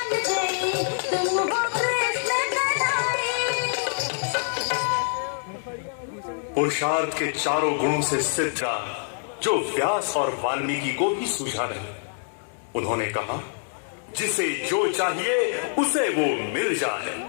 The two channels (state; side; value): silent; right; digital silence